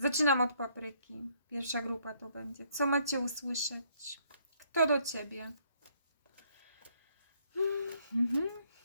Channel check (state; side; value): inverted; both; correlation -0.67